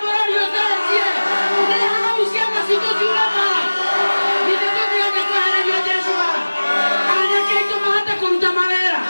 borori otasie. Ne hau siama sito jurama. Ine tutira kwa hana yo Yeshua. Anya keito mahata kuruta malera.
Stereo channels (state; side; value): inverted; both; correlation -1.00